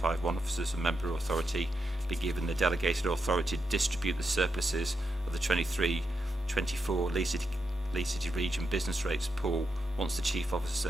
officers and member authority, be given the delegated authority to distribute the surpluses of the 23-24 Leeds City Region business rates pool once the Chief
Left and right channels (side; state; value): both; normal; correlation 0.85